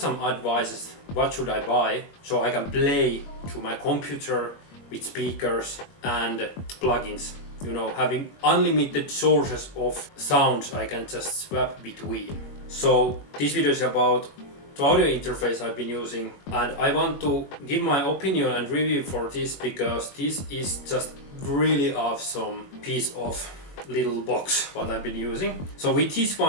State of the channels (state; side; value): late; right; 21 ms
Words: advices, what should I buy so I can play to my computer with speakers and plugins. You know, having unlimited sources of sounds I can just swap between. So this video is about the audio interface I've been using, and I want to give my opinion and review for this because this is just really awesome piece of little box what I've been using. So with this